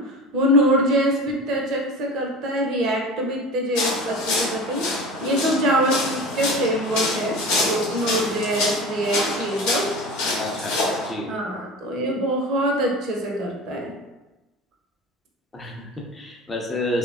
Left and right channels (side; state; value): both; normal; correlation 0.33